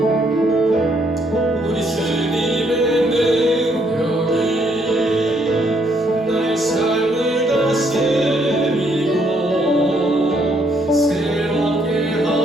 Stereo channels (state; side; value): normal; both; correlation 0.70